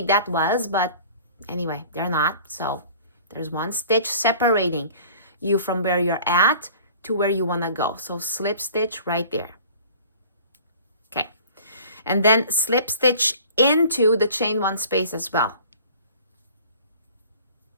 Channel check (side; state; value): both; inverted; correlation -0.47